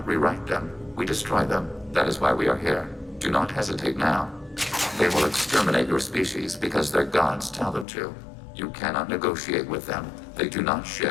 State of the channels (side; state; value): right; drops out; at 7.9 s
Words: rewrite them, we destroy them. That is why we are here. Do not hesitate now. They will exterminate your species because their gods tell them to. You cannot negotiate with them. They do not